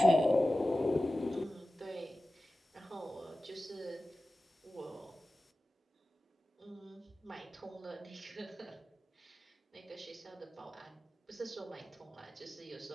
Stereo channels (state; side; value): normal; both; correlation 0.95